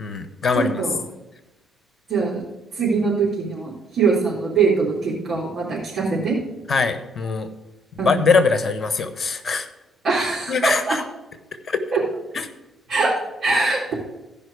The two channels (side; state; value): both; normal; correlation 0.67